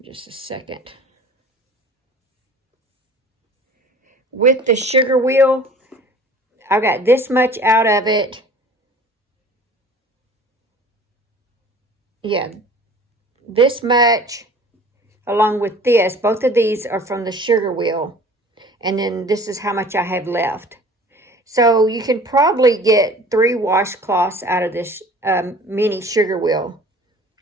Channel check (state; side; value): normal; both; correlation 0.46